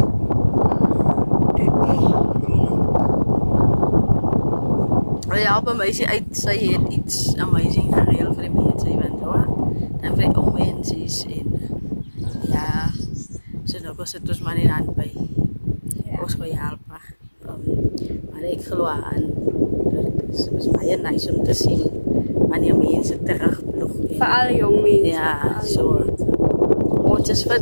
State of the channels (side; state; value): both; inverted; correlation -1.00